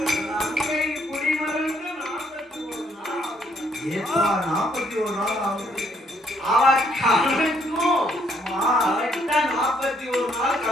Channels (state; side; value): normal; both; correlation 0.69